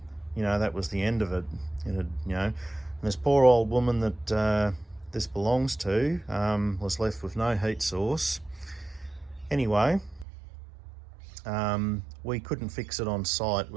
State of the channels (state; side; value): drops out; left; at 10.2 s